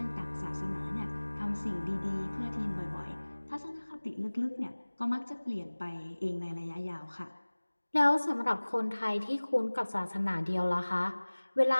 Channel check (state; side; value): inverted; both; correlation -1.00